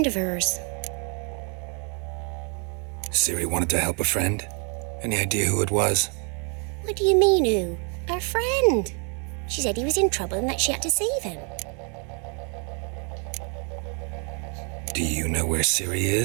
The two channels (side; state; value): left; quieter; 37.7 dB